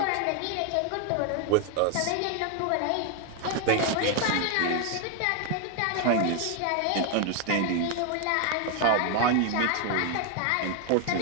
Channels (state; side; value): different; both; correlation 0.01